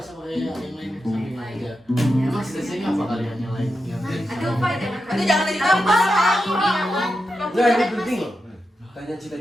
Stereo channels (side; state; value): both; normal; correlation 0.88